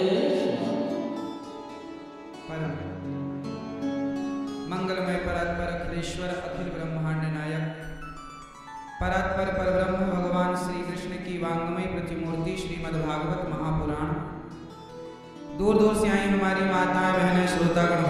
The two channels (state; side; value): identical; both; correlation 1.00